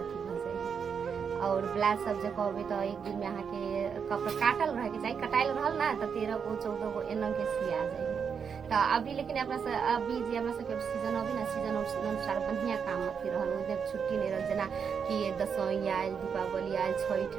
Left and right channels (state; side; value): quieter; left; 6.6 dB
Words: अथी भ जाए। और ब्लाउज सब जो कहबे तो एक दिन में अहाँ के कपड़ा काटल रहे के चाहिए, कटाइल रहल ना तो 13 गो 14 गो एना के सिया जाए। तो अभी लेकिन अपना अभी जे हमरा सबके सीजन अभी ना सीजन अनुसार बढ़िया काम अथी रहल। उधर छुट्टी नहीं रहल, जना कि दशई आयल, दीपावली आयल, छठ